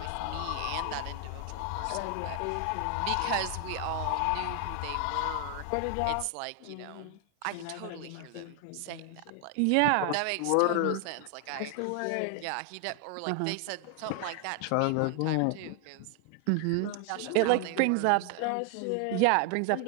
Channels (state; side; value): different; both; correlation 0.00